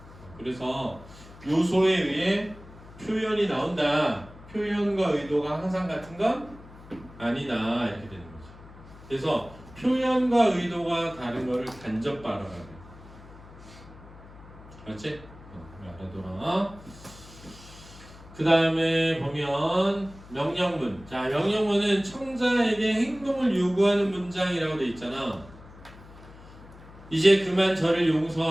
그래서 요소에 의해 표현이 나온다. 표현과 의도가 항상 같은 건 아니다. 이렇게 되는 거죠. 그래서 표현과 의도가 다른 거를 간접 발언하래. 그렇지? 알아둬라. 그 다음에 보면 명령문. 자, 명령문은 청자에게 행동을 요구하는 문장이라고 돼 있잖아. 이제 그만 저를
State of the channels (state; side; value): noise; left; hum, 19 dB below the sound